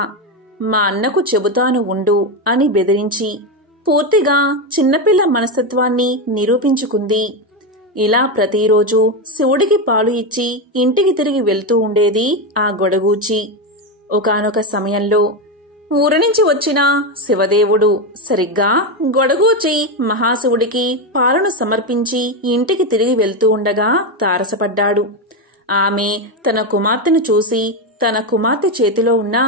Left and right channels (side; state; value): both; normal; correlation 0.11